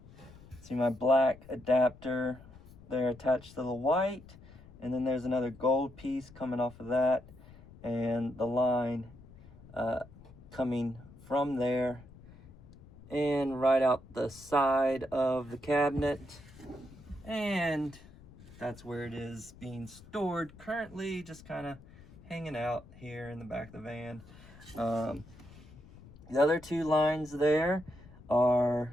See my black adapter there attached to the white, and then there's another gold piece coming off of that, and the line coming from there and right out the side of the cabinet. And that's where it is being stored currently, just kind of hanging out here in the back of the van. The other 2 lines there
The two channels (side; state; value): left; noise; rumble, 20 dB below the sound